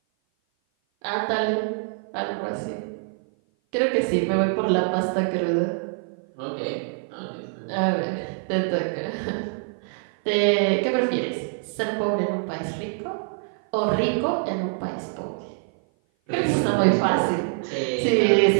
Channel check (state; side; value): silent; left; 56 dB below the other